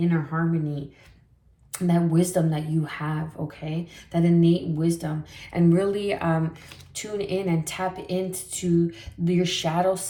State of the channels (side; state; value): both; identical; correlation 1.00